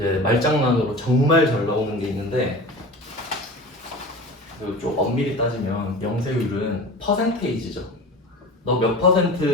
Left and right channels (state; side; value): normal; both; correlation 0.34